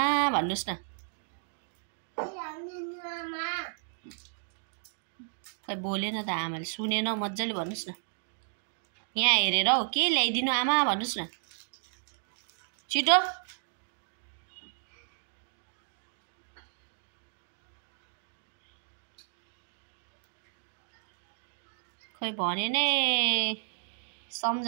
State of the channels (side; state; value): left; silent; digital silence